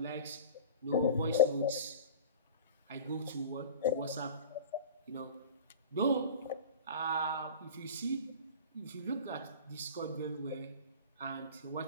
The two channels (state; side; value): inverted; both; correlation -0.36